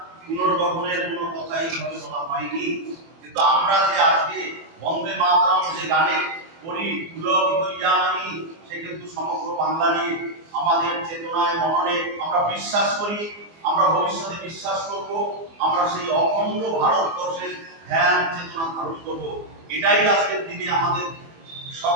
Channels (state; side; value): late; left; 24 ms